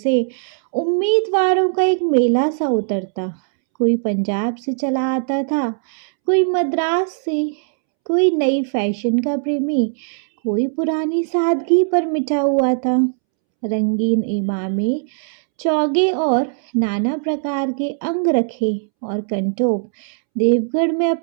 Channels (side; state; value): left; silent; 66 dB below the other